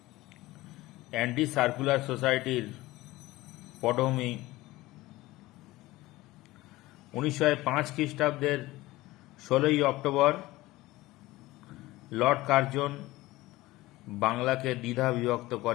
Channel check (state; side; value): quieter; right; 18.6 dB